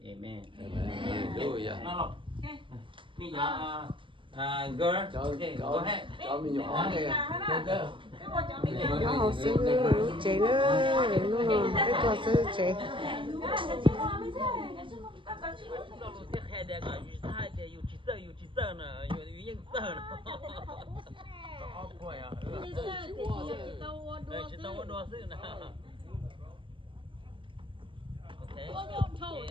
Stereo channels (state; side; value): late; left; 0.25 ms